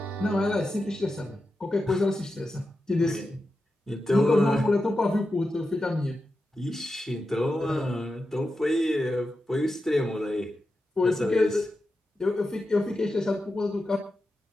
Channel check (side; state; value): both; normal; correlation 0.90